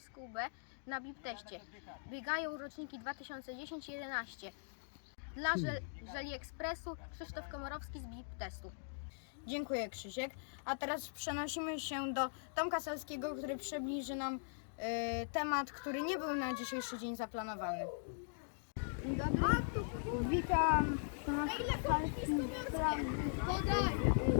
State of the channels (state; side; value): silent; right; digital silence